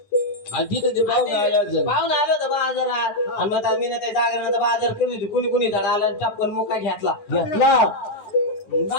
तिथं ते पाहून पाहून आलं होतं बाजारात आणि मग मीनाताई जागरणाचा बाजार केली होती कुणी झाड आला टपकन मुका घेतला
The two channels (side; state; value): right; late; 9.9 ms